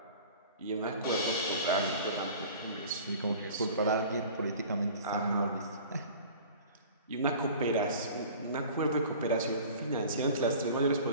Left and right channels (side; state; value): both; inverted; correlation -0.43